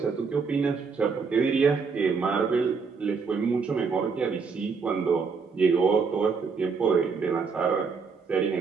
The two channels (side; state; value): left; quieter; 5.2 dB